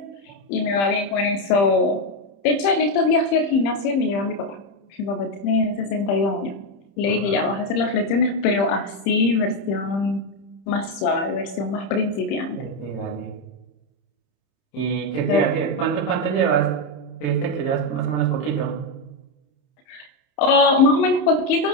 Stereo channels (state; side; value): late; right; 30 ms